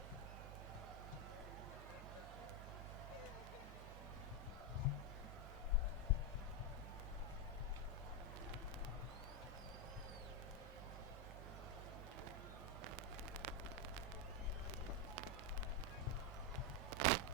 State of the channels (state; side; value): normal; both; correlation 0.04